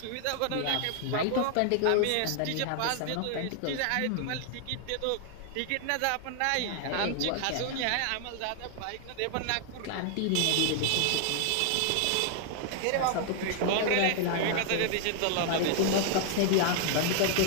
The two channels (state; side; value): different; both; correlation 0.00